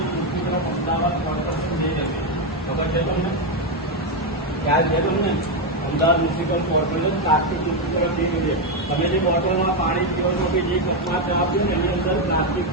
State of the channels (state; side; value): normal; both; correlation 0.05